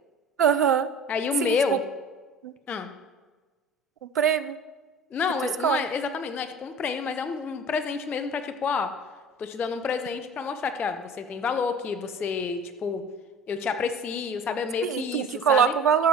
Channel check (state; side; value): normal; both; correlation 0.41